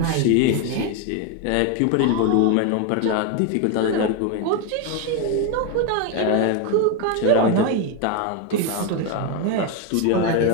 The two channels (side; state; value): both; different; correlation 0.02